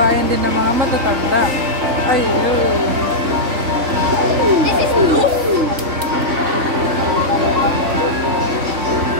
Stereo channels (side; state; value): left; late; 3.6 ms